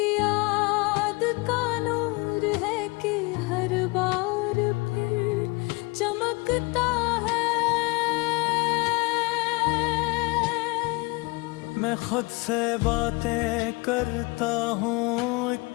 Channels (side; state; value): right; quieter; 26.4 dB